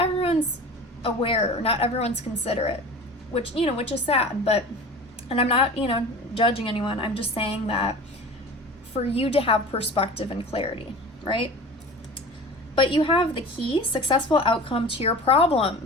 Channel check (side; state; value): both; normal; correlation 0.37